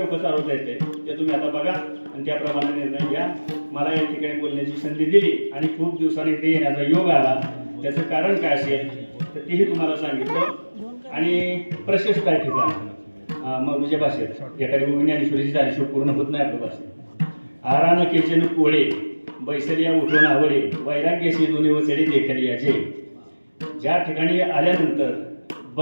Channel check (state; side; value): inverted; both; correlation -1.00